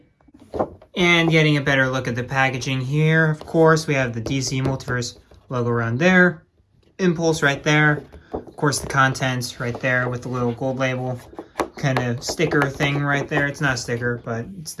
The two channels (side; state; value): both; identical; correlation 1.00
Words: And getting a better look at the packaging here, of course, we have the DC Multiverse logo around there, Impulse right there, of course the contents right there with the little gold label kind of sticker thing right there. It's not a sticker, but it's